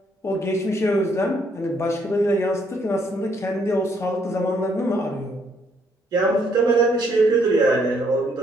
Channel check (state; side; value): normal; both; correlation 0.69